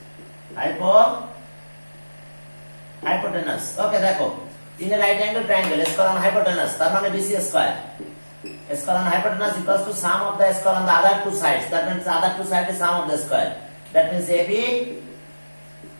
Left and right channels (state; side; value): inverted; both; correlation -1.00